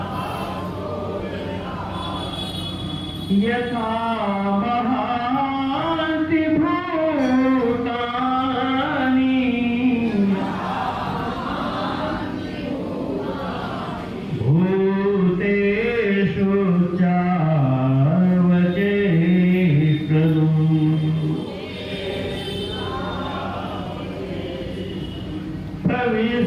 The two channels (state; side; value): identical; both; correlation 1.00